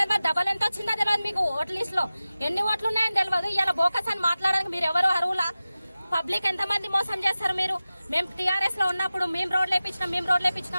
డబల్ ఎంత వచ్చిందో తెలియదు. మీకు ఓట్ల లిస్ట్ లో ఎన్ని ఓట్లు ఉన్నాయని తెలియదు. ఇలా బోకస్ అని మాట్లాడడానికి మీరు ఎవరు అర్హులా? పబ్లిక్ ఎంతమంది మోసం చేస్తారు మీరు? మేము టీఆర్ఎస్ లో ఉన్నప్పుడు మేము రోడ్లు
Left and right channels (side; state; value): both; inverted; correlation -0.95